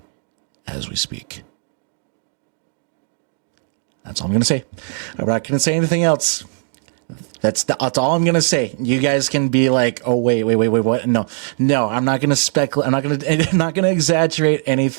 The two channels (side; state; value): left; silent; digital silence